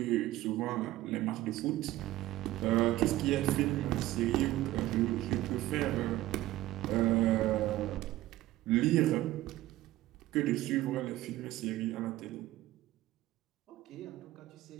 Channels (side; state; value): left; quieter; 16.0 dB